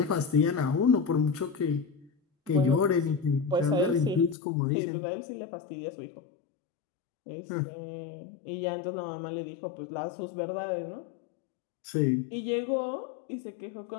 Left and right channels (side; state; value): right; drops out; at 4.4 s